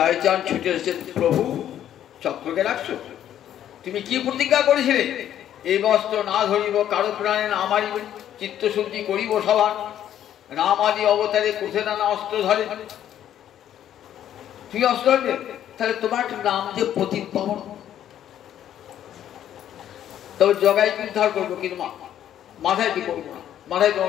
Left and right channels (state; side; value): quieter; right; 10.9 dB